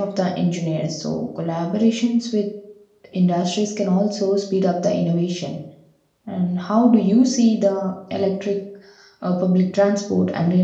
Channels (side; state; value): both; identical; correlation 1.00